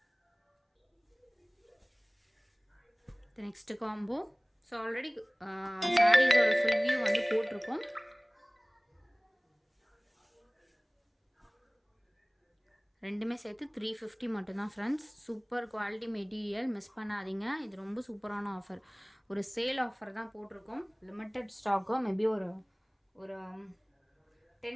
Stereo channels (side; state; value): both; identical; correlation 1.00